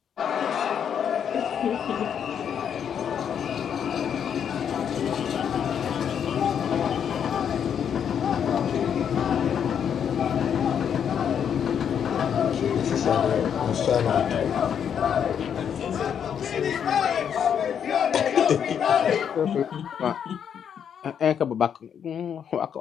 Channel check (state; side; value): quieter; right; 8.2 dB